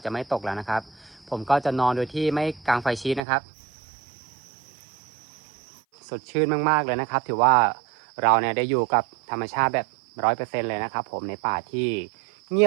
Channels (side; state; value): left; drops out; at 3.2 s